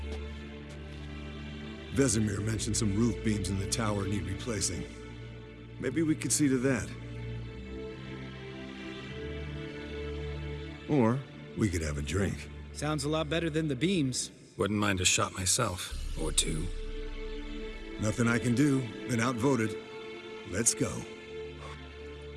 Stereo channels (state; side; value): identical; both; correlation 1.00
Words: Vesemir mentioned some roof beams in the tower need replacing. Maybe we could see to that. Or we could have a drink. Sounds a lot better than the beams. Wouldn't mind a shot myself, or two. Nothing I can do. Been outvoted. Let's go.